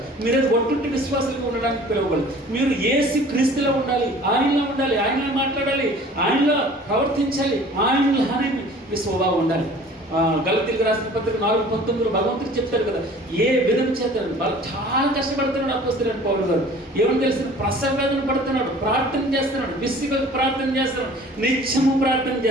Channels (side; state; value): both; normal; correlation 0.48